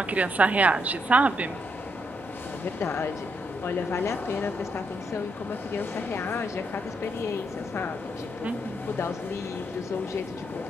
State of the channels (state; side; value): normal; both; correlation 0.77